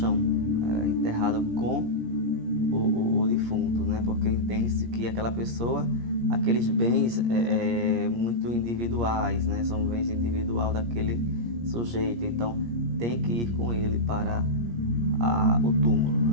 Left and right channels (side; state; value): left; late; 17 ms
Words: enterrado com o defunto, né? Porque entende-se que aquela pessoa, aqueles bens muito individuais, né? São bens individuais daquele sujeito, então tem que ir com ele para o túmulo,